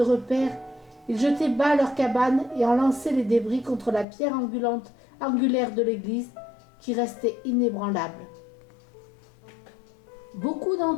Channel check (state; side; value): drops out; right; at 4.0 s